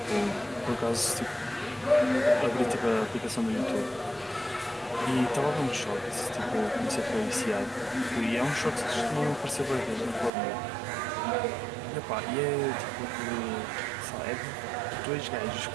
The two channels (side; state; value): left; drops out; at 10.3 s